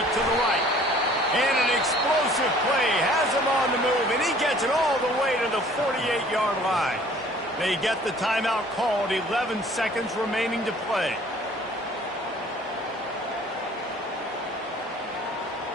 to the right. And an explosive play has him on the move, and he gets it all the way to the 48-yard line. They get the timeout called, 11 seconds remaining to play.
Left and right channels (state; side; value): normal; both; correlation 0.53